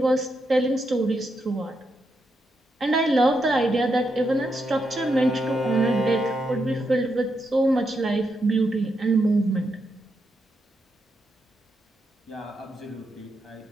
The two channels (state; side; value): normal; both; correlation 0.83